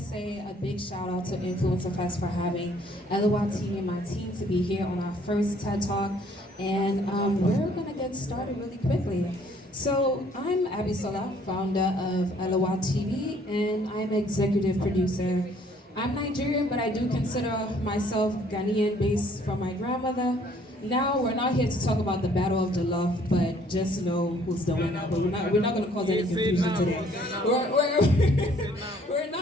a big shout out to Influencer Fest for having LOL TV and my team to be here on our first TED Talk. And we're going to get started really quickly. So I'm Abisola, founder of LOL TV, and I'm executive producer. I'm Nigerian, but I do consider myself Ghanaian based from my grandmother. Now we're not here to talk about the Battle of Jollof, but just know who's the winner. But we're not going to cause any confusion today. We're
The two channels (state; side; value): normal; both; correlation 0.61